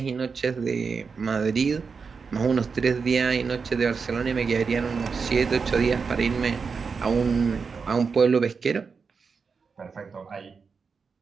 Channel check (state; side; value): quieter; left; 5.3 dB